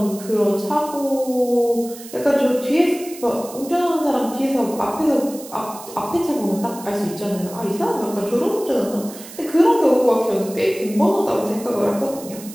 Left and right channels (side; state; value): right; noise; hiss, 16 dB below the sound